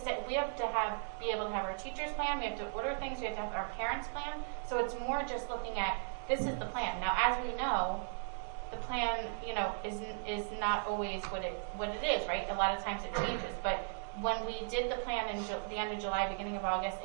be able to have our teachers plan. We have to order things. We have to have our parents plan. So it's more just looking at this is the plan. Now, as we know, the plan, you know, is not always what it is, right? A lot of times it changes, but when we did the plan in the end of July, beginning of August,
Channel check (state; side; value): silent; left; digital silence